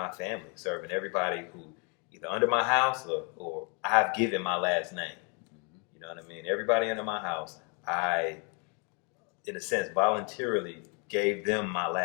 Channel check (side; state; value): right; quieter; 34.9 dB